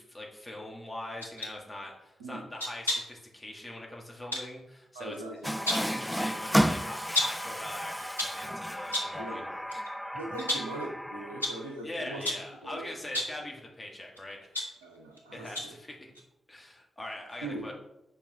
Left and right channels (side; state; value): both; normal; correlation 0.71